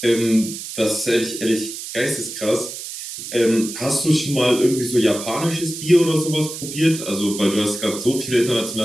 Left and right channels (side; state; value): right; noise; hiss, 9 dB below the sound